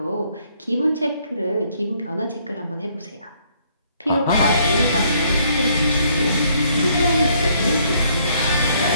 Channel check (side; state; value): both; inverted; correlation -0.67